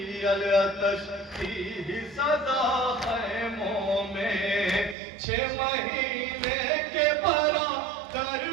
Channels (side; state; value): left; drops out; at 5.0 s